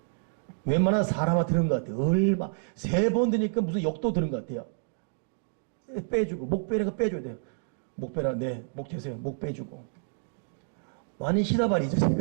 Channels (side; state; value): left; silent; digital silence